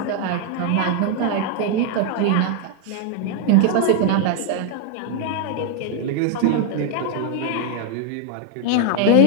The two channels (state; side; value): different; both; correlation 0.00